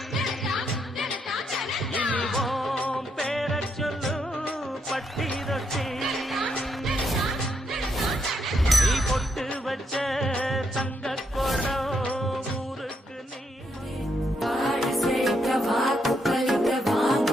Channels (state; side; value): normal; both; correlation 0.78